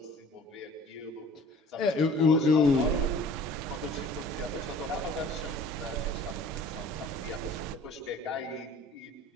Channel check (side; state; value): both; normal; correlation 0.48